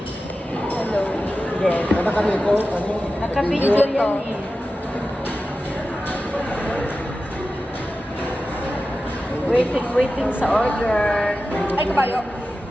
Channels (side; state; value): both; normal; correlation 0.93